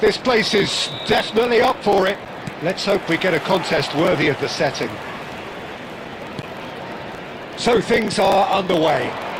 place is definitely up for it. Let's hope we get a contest worthy of the setting. So things are underway.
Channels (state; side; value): identical; both; correlation 1.00